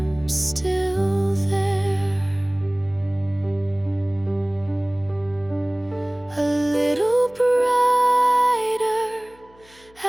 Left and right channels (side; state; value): left; noise; hum, 29 dB below the sound